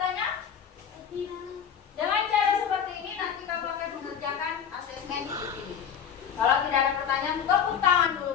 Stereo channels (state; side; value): quieter; right; 8.0 dB